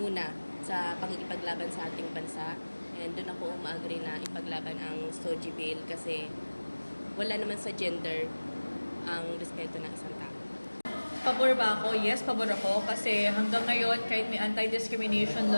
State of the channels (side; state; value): both; inverted; correlation -1.00